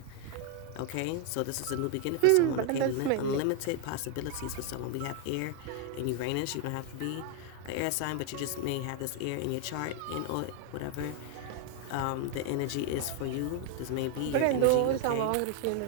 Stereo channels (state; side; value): different; both; correlation 0.00